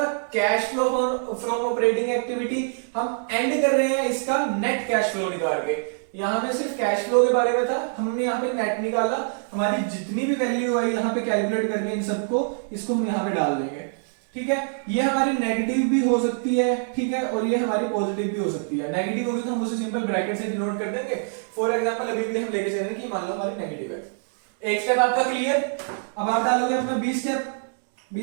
cash flow from operating activity, हम एंड कर रहे हैं इसका नेट कैश फ्लो निकाल के। यहां में सिर्फ कैश फ्लो के बारे में था, हमने यहाँ पे नेट निकाला, हमारी जितनी भी वैल्यू आई यहाँ पे कैलकुलेट करके इन सबको, इसको हम यहाँ पे डाल देंगे। ठीक है, ये हमारी नेगेटिव भी हो सकती है, ठीक है, और ये हमारी पॉजिटिव भी हो सकती है। नेगेटिव होगी तो हम उसे सिंपल ब्रैकेट से डिनोट कर देंगे। फॉर एग्जांपल अभी भी हम लेके चल रहे हैं कि मान लो हमारी नेगेटिव है। एक स्टेप आपका क्लियर। अब आप डालोगे अपना बी स्टेप।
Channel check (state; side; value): silent; left; digital silence